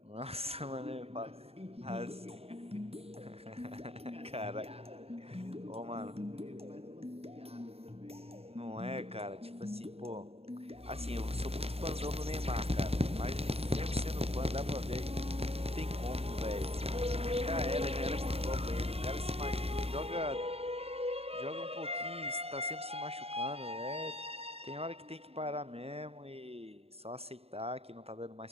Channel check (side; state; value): left; late; 0.29 ms